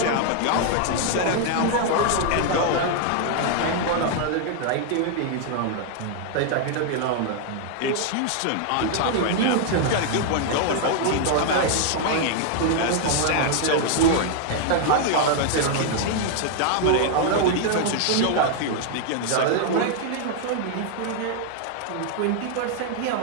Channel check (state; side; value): different; both; correlation 0.00